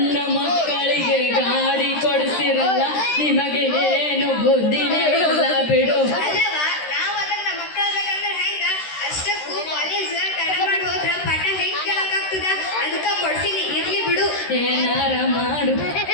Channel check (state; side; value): late; right; 13 ms